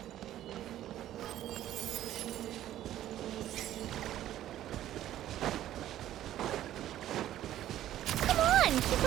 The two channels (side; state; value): left; quieter; 12.7 dB